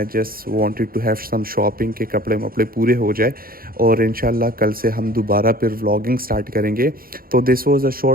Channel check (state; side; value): late; left; 0.42 ms